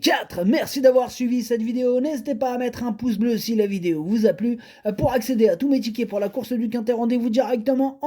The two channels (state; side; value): identical; both; correlation 1.00